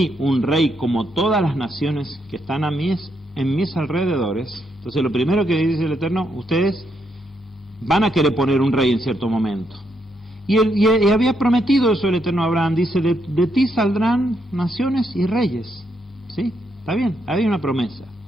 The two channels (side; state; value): both; normal; correlation 0.78